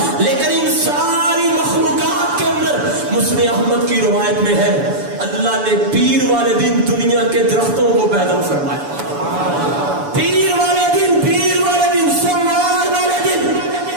لیکن ان ساری مخلوقات کے اندر مسند احمد کی روایت میں ہے اللہ نے پیر والے دن دنیا کے درختوں کو پیدا فرمایا۔ پیر والے دن سوموار والے دن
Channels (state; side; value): late; left; 7.0 ms